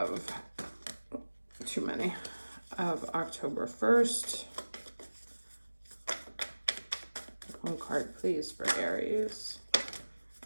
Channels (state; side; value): inverted; both; correlation -1.00